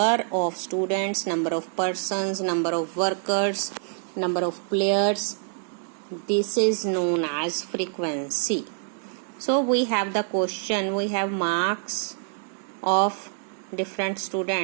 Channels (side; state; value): left; silent; digital silence